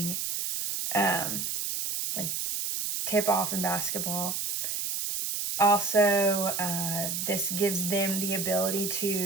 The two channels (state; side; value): noise; right; hiss, 2 dB below the sound